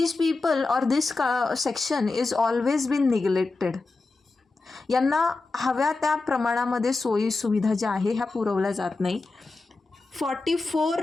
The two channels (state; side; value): quieter; right; 3.6 dB